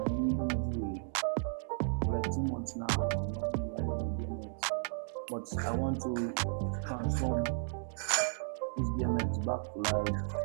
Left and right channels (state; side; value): silent; left; digital silence